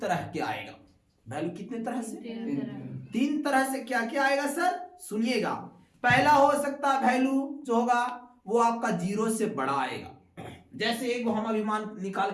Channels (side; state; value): both; identical; correlation 1.00